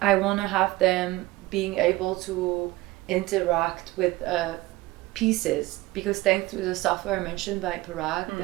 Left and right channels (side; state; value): left; quieter; 19.1 dB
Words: want to have them being able to interact with pieces, because thanks to the software mentioned by Parag,